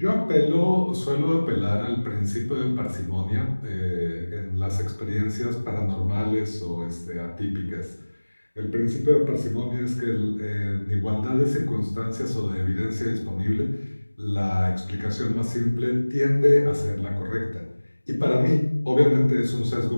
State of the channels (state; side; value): inverted; both; correlation -1.00